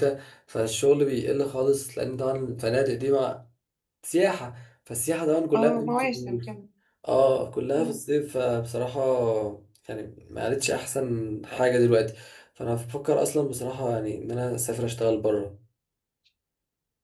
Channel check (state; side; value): identical; both; correlation 1.00